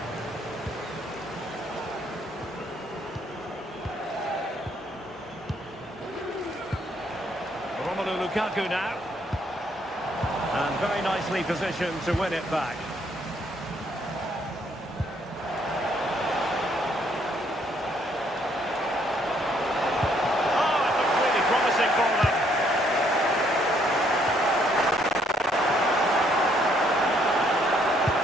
Romelu Lukaku now. And very nicely positioned to win it back. Oh, it looks really promising for them.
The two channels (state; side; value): normal; both; correlation 0.68